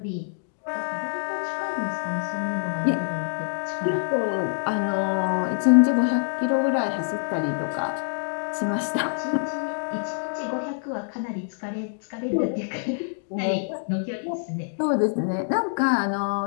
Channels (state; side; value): silent; right; digital silence